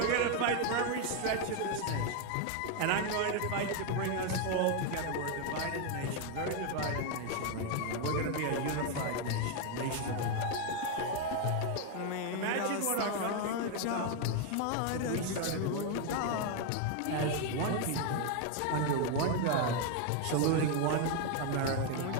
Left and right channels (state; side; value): different; both; correlation 0.01